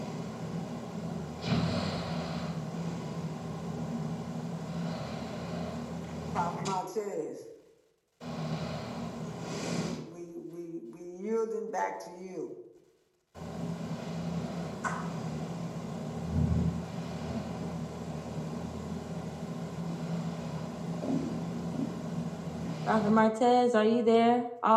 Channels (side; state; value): both; identical; correlation 1.00